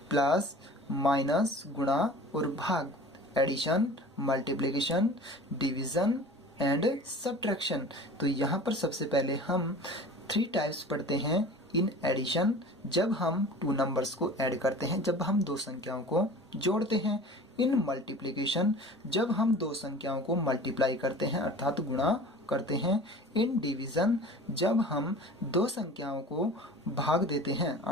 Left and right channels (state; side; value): normal; both; correlation 0.41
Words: प्लस, माइनस, गुणा और भाग, addition, multiplication, division and subtraction. तो यहाँ पर सबसे पहले हम 3 टाइप्स पढ़ते हैं। इन एडिशन, जब हम 2 नंबर्स को ऐड करते हैं, जब हम 2 संख्याओं को जोड़ते हैं। इन मल्टीप्लिकेशन, जब हम 2 संख्याओं को मल्टीप्लाई करते हैं अर्थात गुणा करते हैं। इन डिवीजन, जब हम 2 संख्याओं को भाग देते हैं